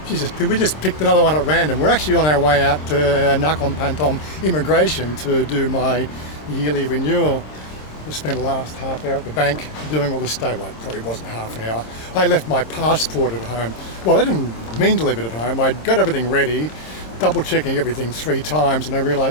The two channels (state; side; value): late; right; 26 ms